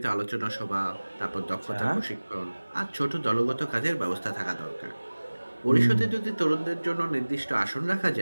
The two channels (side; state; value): both; inverted; correlation -1.00